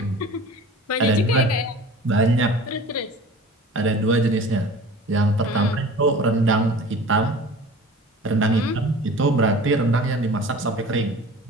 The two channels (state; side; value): normal; both; correlation 0.41